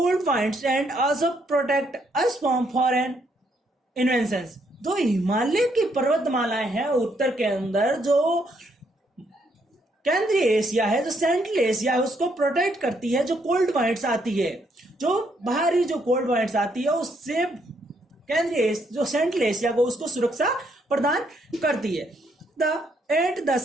winds and also protect us from foreign inventions. तो हिमालय की पर्वतमालाएं हैं उत्तर के अंदर जो केंद्रीय एशिया है, जो सेंट्रल एशिया है, उसको प्रोटेक्ट करती है। जो कोल्ड वाइंड्स आती है, जो बाहरी जो कोल्ड वाइंड्स आती है, उससे केंद्रीय जो सेंट्रल एशिया को उसको सुरक्षा प्रदान करती है। At the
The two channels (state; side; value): normal; both; correlation 0.73